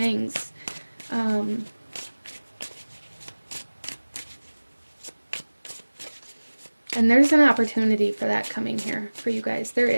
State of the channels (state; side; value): inverted; both; correlation -1.00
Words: And there's an opportunity for that coming here for you guys.